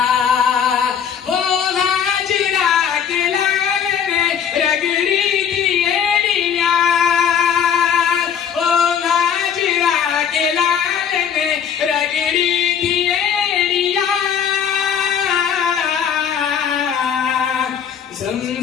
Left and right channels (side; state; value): right; quieter; 8.0 dB